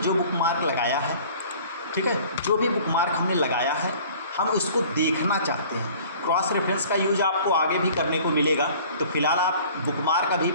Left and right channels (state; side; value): inverted; both; correlation -0.49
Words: बुकमार्क लगाया है, ठीक है, जो भी बुकमार्क हमने लगाया है हम उसको देखना चाहते हैं। क्रॉस रेफरेंस का यूज आपको आगे भी करने को मिलेगा, तो फिलहाल आप बुकमार्क अभी